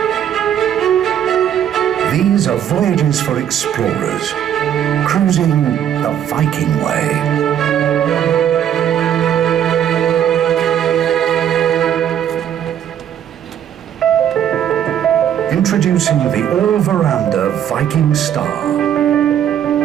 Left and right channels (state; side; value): quieter; left; 9.9 dB